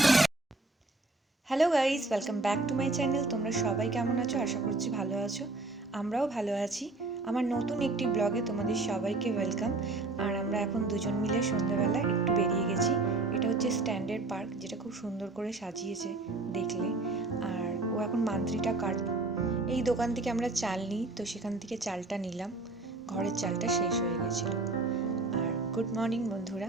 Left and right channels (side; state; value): left; quieter; 3.2 dB